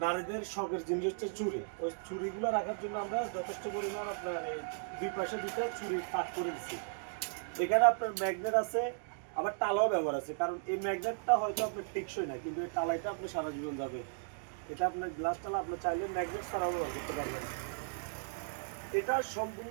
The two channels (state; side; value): silent; left; digital silence